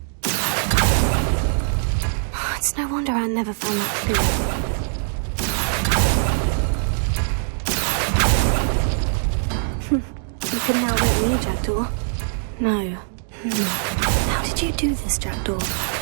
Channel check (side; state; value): left; silent; digital silence